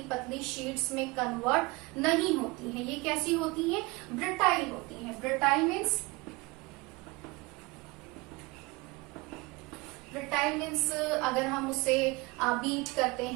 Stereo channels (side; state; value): left; quieter; 24.4 dB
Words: पतली शीट्स में कन्वर्ट नहीं होती हैं। ये कैसी होती हैं? ब्रिटाइल होती हैं। ब्रिटाइल मीन्स ब्रिटाइल मीन्स अगर हम उसे बीट करते